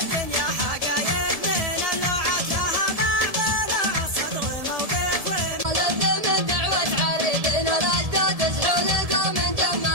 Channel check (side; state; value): left; late; 1.7 ms